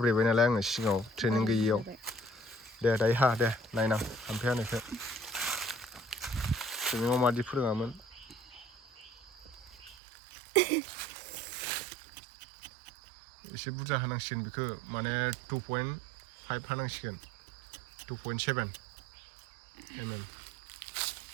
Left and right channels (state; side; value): drops out; left; at 10.0 s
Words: नालाय आङो सिगाङाव ट्रेनिं गैयियाव दे दायो हा दे नायनां हाम्फे हानायखौ ट्रेनिङाव मादि फोरोङामोन एसे बुरजा हानांसिगोन बेखौ माने 2.5 हानांसिगोन 2.7 mm